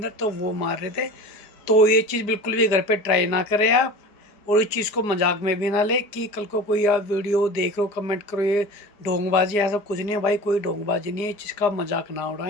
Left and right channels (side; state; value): right; late; 4.9 ms